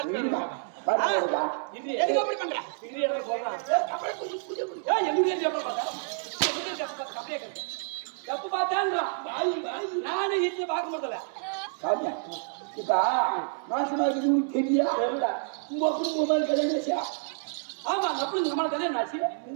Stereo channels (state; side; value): silent; left; 59 dB below the other